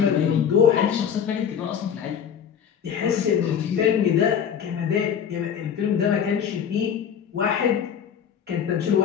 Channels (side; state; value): right; quieter; 8.0 dB